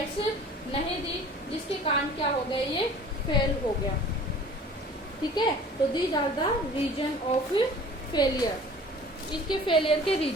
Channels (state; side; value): normal; both; correlation 0.46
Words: नहीं दी, जिसके कारण क्या हो गया, ये फेल हो गया। ठीक है, तो these are the reason of failure. इसके फेलियर के